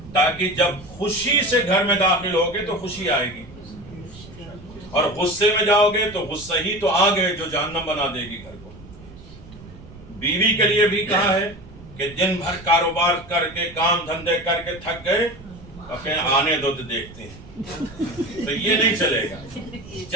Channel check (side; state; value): right; noise; rumble, 18 dB below the sound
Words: تاکہ جب خوشی سے گھر میں داخل ہوگے تو خوشی آئے گی، اور غصے میں جاؤ گے تو غصہ ہی تو آ گئے جو جہنم بنا دے گی گھر کو۔ بیوی کے لیے بھی کہا ہے کہ دن بھر کاروبار کر کے، کام دھندے کر کے تھک گئے، اپنے آنے دو تو دیکھتے ہیں، تو یہ نہیں چلے گا۔